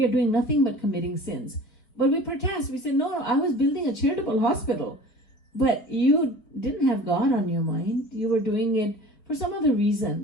are doing nothing but committing sins. But we protest. We say, no, I was building a charitable hospital. But you didn't have God on your mind. You were doing it for some other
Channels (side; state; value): right; late; 4.5 ms